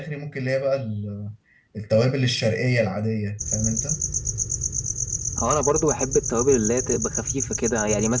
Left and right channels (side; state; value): both; identical; correlation 1.00